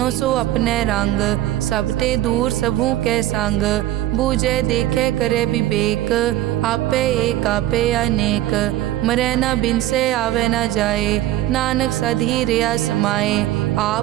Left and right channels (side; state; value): left; quieter; 14.4 dB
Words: सो अपने रंग, सब ते दूर सबू के संग, बूझे देखे करे विवेक, आपे एक आपे अनेक, मरे न बिन से आवे न जाए, नानक सधी रिया समाए,